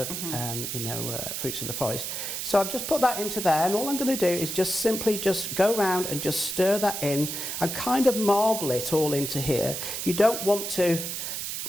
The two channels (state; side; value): noise; right; hiss, 4 dB below the sound